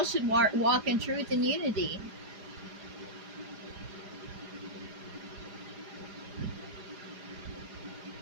should walk in truth and unity.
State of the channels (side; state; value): left; late; 4.9 ms